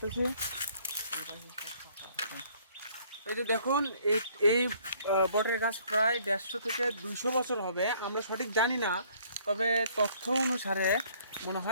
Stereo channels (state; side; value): inverted; both; correlation -0.61